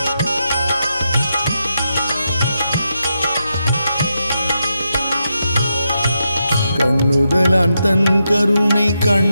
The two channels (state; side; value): inverted; both; correlation -0.85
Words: கண்ணுதலான் தன் கருணை